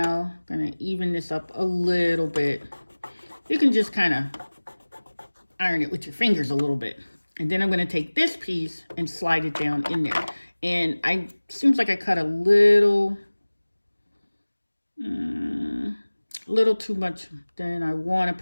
I'm gonna even this up a little bit. You can just kind of iron it with your fingers a little bit. And then I'm gonna take this piece and slide it down in there. And seems like I cut a little too much than I want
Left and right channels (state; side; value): inverted; both; correlation -1.00